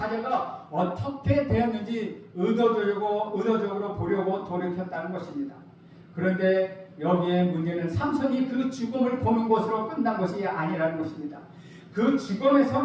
어떻게 되었는지 의도적으로 보려고 돌이켰다는 것입니다. 그런데 여기에 문제는 삼손이 그 죽음을 보는 것으로 끝난 것이 아니라는 것입니다. 그 죽음에서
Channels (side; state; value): both; identical; correlation 1.00